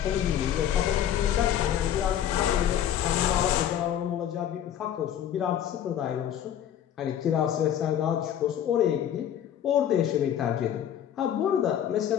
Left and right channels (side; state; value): right; quieter; 10.2 dB